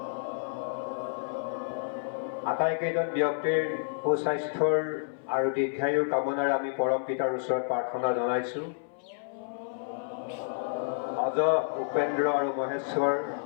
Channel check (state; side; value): silent; right; 57 dB below the other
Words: আটাইকেইজন ব্যক্তিৰ সুস্বাস্থ্যৰ আৰু দীৰ্ঘায়ুৰ কামনাৰে আমি পৰম পিতাৰ ওচৰত প্ৰাৰ্থনা জনাইছোঁ। অজ, উপেন্দ্ৰ আৰু মহেশ্বৰ